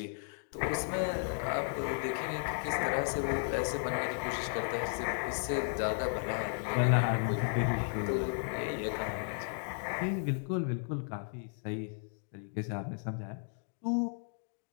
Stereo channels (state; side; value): silent; right; 55 dB below the other